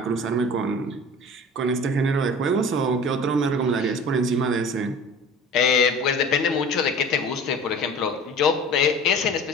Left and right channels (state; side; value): normal; both; correlation 0.41